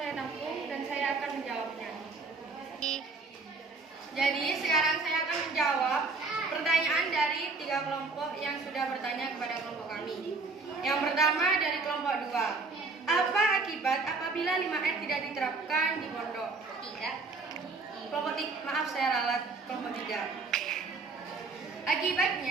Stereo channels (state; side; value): quieter; left; 4.0 dB